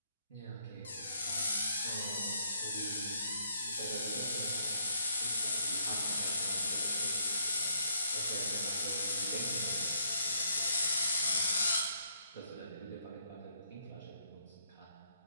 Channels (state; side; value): inverted; both; correlation -0.69